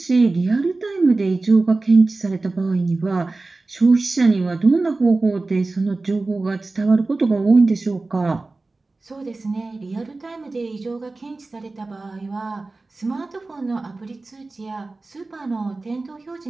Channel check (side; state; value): left; quieter; 3.4 dB